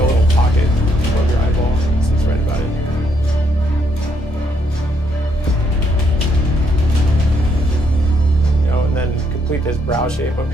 little pocket above your eyeball. So it's right about it. Then complete this brow shape up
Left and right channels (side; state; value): both; normal; correlation 0.74